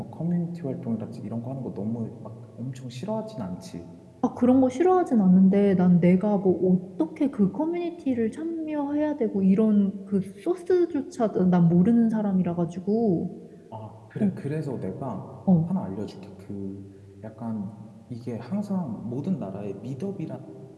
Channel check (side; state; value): both; identical; correlation 1.00